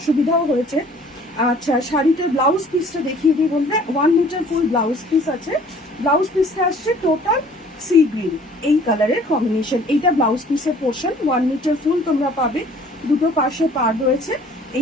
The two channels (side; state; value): both; normal; correlation 0.53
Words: হয়েছে। আচ্ছা, শাড়িটার ব্লাউজ পিসটা দেখিয়ে দিই বন্ধুরা। 1 মিটার ফুল ব্লাউজ পিস আছে, ব্লাউজ পিসটা আসছে টোটাল সি গ্রিন এই কালারের কম্বিনেশন। এইটা ব্লাউজ পিসের পোর্শন, 1 মিটার ফুল তোমরা পাবে, দুটো পাশে পাড় রয়েছে।